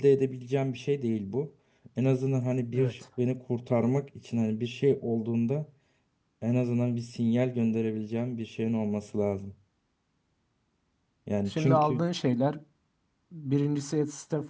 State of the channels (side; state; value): both; identical; correlation 1.00